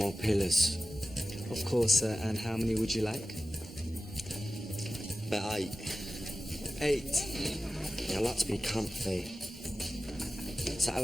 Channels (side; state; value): both; normal; correlation 0.94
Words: pillars. Of course, sir. And how many would you like? About 8. 8. Yeah, I like to be comfy. Is that